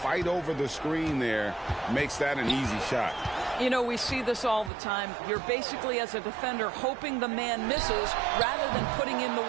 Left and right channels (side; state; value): left; drops out; at 4.7 s